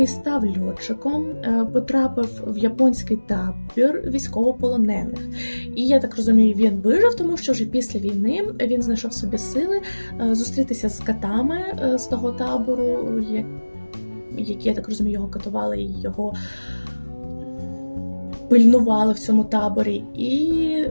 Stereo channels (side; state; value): both; inverted; correlation -1.00